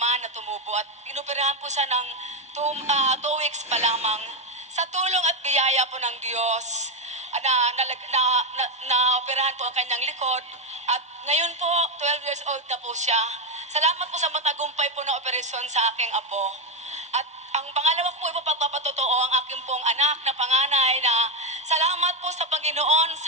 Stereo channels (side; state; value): both; normal; correlation 0.08